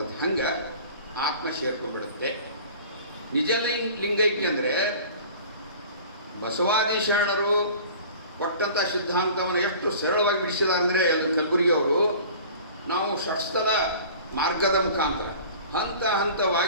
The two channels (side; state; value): both; inverted; correlation -0.43